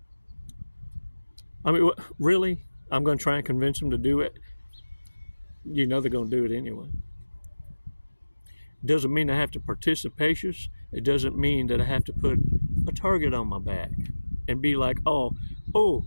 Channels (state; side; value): inverted; both; correlation -1.00